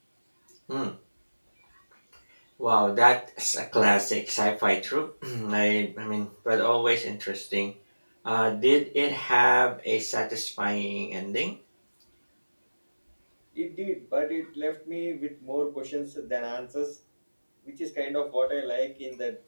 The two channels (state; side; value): inverted; both; correlation -1.00